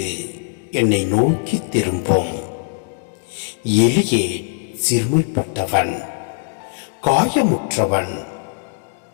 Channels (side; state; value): right; silent; digital silence